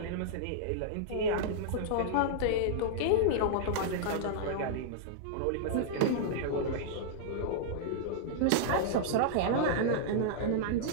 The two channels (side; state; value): both; different; correlation -0.02